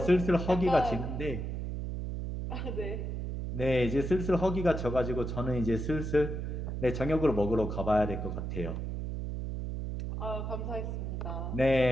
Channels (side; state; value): right; noise; hum, 4 dB below the sound